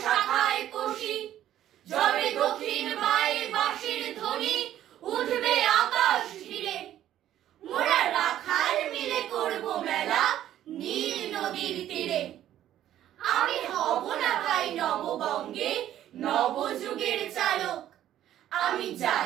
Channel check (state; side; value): quieter; left; 12.0 dB